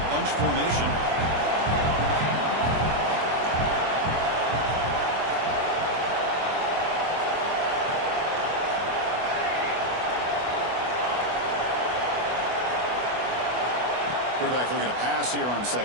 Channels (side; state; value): left; late; 24 ms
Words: bunch formation. Quarterback looking to pass here on